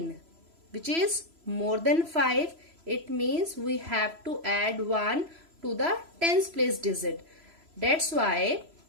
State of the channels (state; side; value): late; left; 3.0 ms